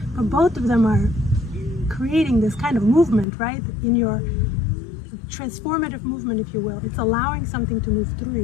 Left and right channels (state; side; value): drops out; right; at 3.2 s